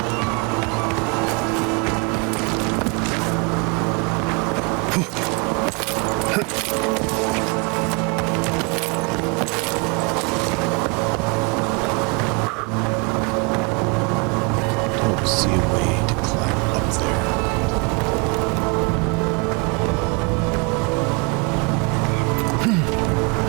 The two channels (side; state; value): left; quieter; 31.6 dB